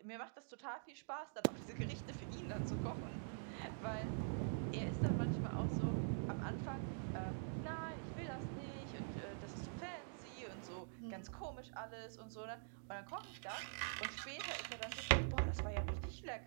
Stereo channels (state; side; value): silent; left; digital silence